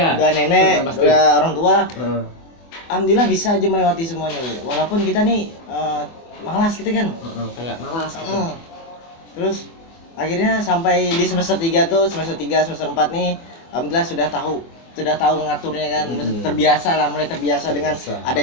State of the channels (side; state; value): right; late; 24 ms